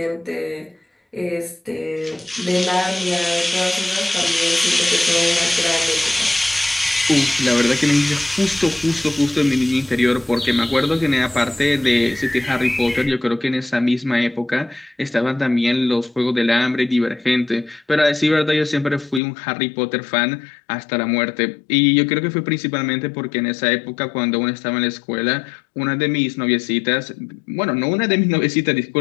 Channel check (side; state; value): right; drops out; at 19.2 s